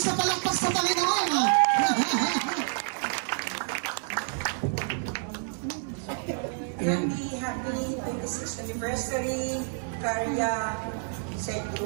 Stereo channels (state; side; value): silent; left; digital silence